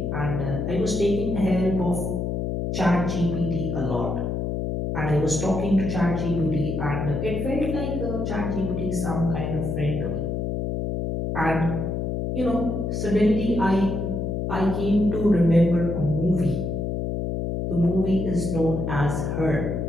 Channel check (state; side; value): noise; left; hum, 1 dB below the sound